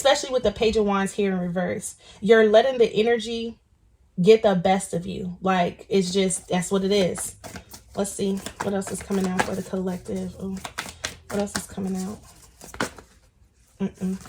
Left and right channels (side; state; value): both; identical; correlation 1.00